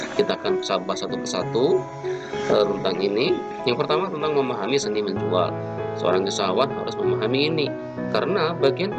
Kita akan bahas satu persatu tentang ini. Yang pertama tentang memahami seni menjual. Seorang usahawan harus memahami ini, karena bagian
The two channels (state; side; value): identical; both; correlation 1.00